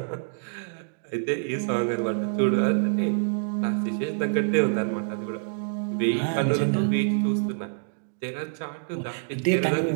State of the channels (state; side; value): silent; left; digital silence